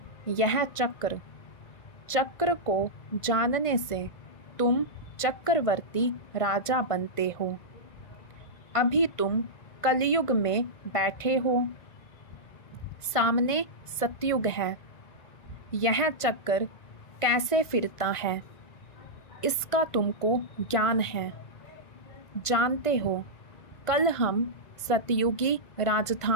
यह चक्र। चक्र को जानने से तुम चक्रवर्ती राजा बनते हो। अभी तुम कलयुग में बैठे हो, सामने सतयुग है। यह चक्र कैसे फिरता है इसका तुमको ज्ञान है। जानते हो कल हम सतयुगी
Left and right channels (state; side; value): late; right; 1.9 ms